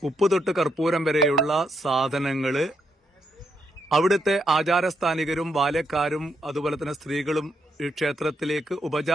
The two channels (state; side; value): normal; both; correlation 0.78